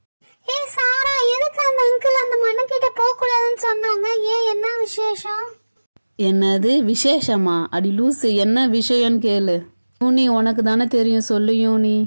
சாரா, எதுக்கு அந்த அங்கிள் அந்த மண்ணு கிட்ட போக கூடாதுன்னு சொன்னாங்க? என்ன விசேஷம்? என்னது விசேஷமா? அடி லூசு, என்ன விஷயம்னு கேளு. யூனி, உனக்கு தானே தெரியும், சொல்லு யூனி.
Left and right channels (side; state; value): both; inverted; correlation -1.00